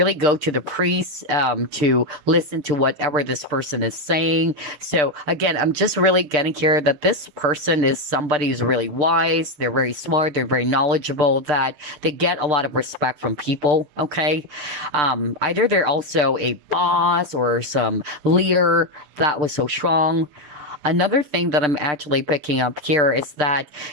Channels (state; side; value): late; left; 6.7 ms